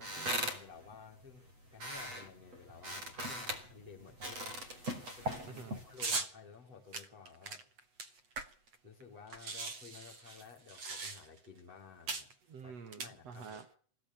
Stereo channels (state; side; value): late; left; 8.0 ms